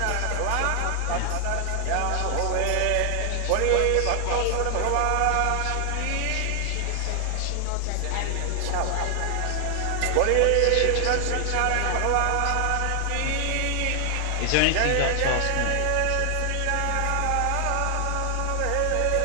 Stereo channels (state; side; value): different; both; correlation 0.00